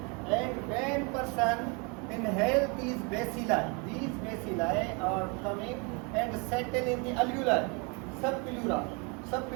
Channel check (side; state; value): left; quieter; 32.0 dB